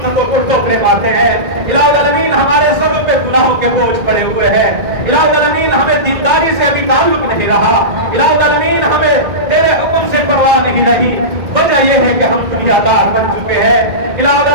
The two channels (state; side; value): late; left; 1.9 ms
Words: کو ٹوکرے مارتے ہیں. الہ العالمین ہمارے سبوں پہ گناہوں کے بوجھ پڑے ہوئے ہیں. الہ العالمین ہمیں دینداری سے ابھی تعلق نہیں رہا. الہ العالمین ہمیں تیرے حکم سے پرواہ نہیں رہی. وجہ یہ ہے کہ ہم دنیا دار بن چکے ہیں. الہ